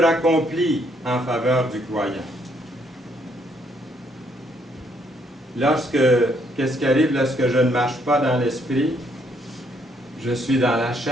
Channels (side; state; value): both; normal; correlation 0.70